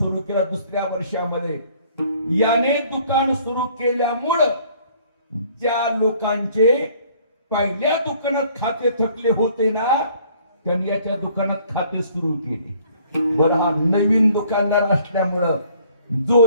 केलं. दुसऱ्या वर्षामध्ये याने दुकान सुरू केल्यामुळं ज्या लोकांचे पहिल्या दुकानात खाते थकले होते ना, त्यांनी याच्या दुकानात खाते सुरू केले. बरं, हा नवीन दुकानदार असल्यामुळं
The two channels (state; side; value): inverted; both; correlation -0.59